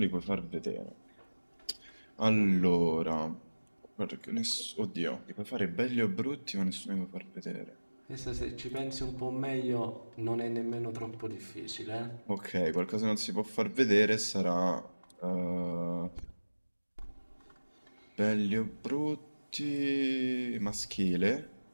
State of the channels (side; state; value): both; inverted; correlation -1.00